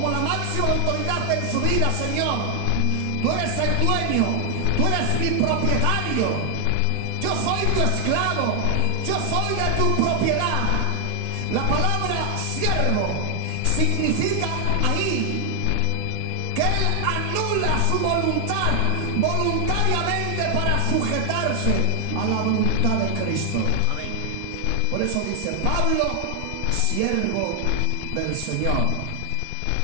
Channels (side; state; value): both; different; correlation 0.00